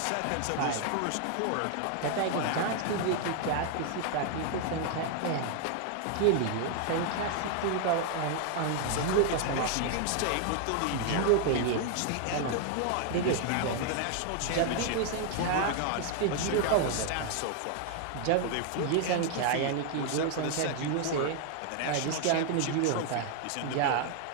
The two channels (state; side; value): different; both; correlation 0.00